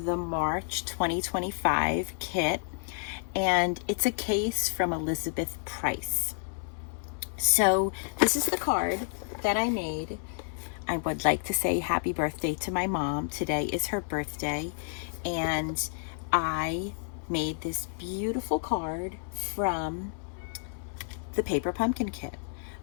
the March 2025 kit, and it's a case from Elizabeth Price. So this is the card that I made. I would like to say happy birthday to my mom. Today is her birthday, and I made this beautiful card from the paper pumpkin kit.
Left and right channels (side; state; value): right; silent; 58 dB below the other